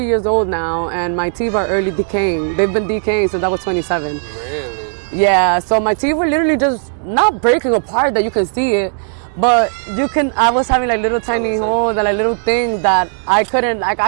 years old now, and my teeth are early decaying. They've been decaying since I was 27. Really? Yeah. So my teeth were literally just not breaking apart that you can see it. But I was having like little tiny holes and like little things that I couldn't, like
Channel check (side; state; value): left; silent; digital silence